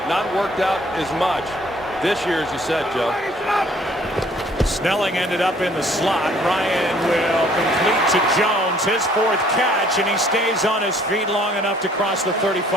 not worked out as much this year, as you said, Joe. Snelling ended up in the slot. Ryan will complete to Jones, his 4th catch, and he stays on his feet long enough to cross the 35.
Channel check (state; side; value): normal; both; correlation 0.59